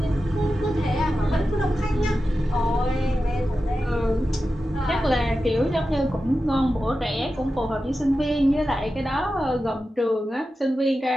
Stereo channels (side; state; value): both; normal; correlation 0.92